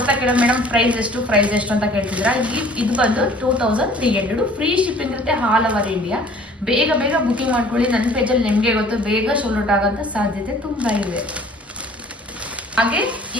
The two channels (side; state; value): both; normal; correlation 0.51